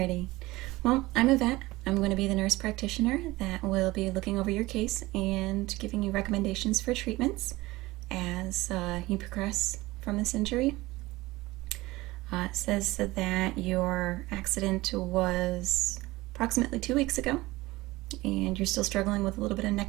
Well, I'm a vet. I'm going to be the nurse practitioner that will be looking over your case and giving you recommendations for treatments as you progress from this injury. It says that your accident was approximately 2 weeks ago, and you're still struggling with a little bit of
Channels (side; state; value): left; quieter; 19.7 dB